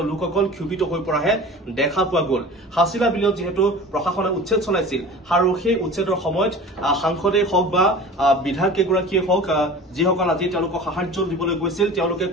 লোকসকল ক্ষোভিত হৈ পৰাহে দেখা পোৱা গল। হাছিলা বিলত যিহেতু প্ৰশাসনে উচ্ছেদ চলাইছিল আৰু সেই উচ্ছেদৰ সময়ত সাংসদেই হওক বা বিধায়কগৰাকীয়ে হওক, যিসকল আজি তেওঁলোকক সাহায্য দিবলৈ গৈছিল তেওঁলোকে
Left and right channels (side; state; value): both; normal; correlation 0.38